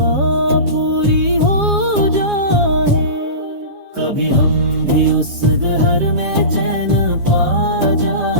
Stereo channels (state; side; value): late; left; 7.3 ms